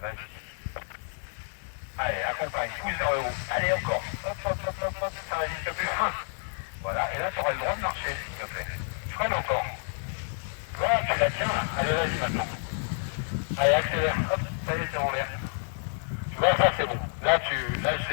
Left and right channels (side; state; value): right; silent; digital silence